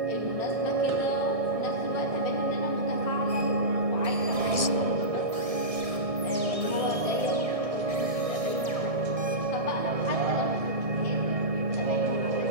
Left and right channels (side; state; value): left; late; 1.6 ms